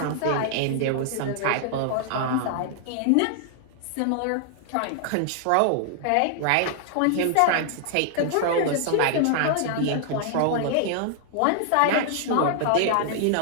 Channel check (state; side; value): different; both; correlation -0.01